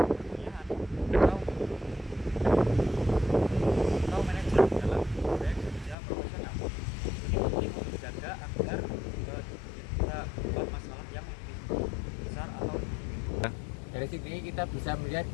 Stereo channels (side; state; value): right; drops out; at 6.0 s